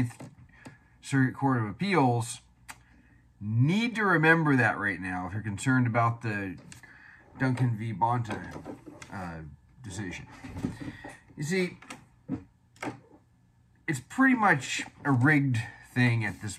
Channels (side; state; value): both; identical; correlation 1.00